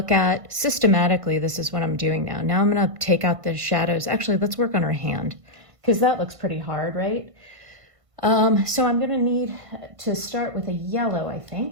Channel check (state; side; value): late; left; 1.5 ms